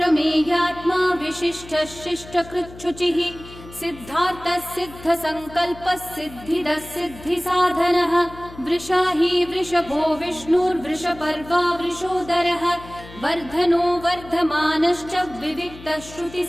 विशिष्टः शिष्टकृच्छुचिः सिद्धार्थः सिद्धसङ्कल्पः सिद्धिदः सिद्धिसाधनः वृषाही वृषभो विष्णुर्वृषपर्वा वृषोदरः वर्धनो वर्धमानश्च विविक्तः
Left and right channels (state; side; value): noise; left; hum, 18 dB below the sound